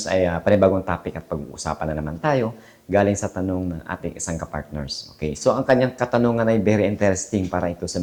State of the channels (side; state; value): both; identical; correlation 1.00